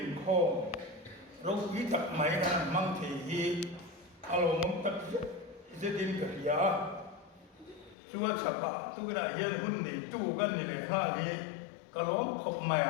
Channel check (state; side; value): drops out; right; at 8.0 s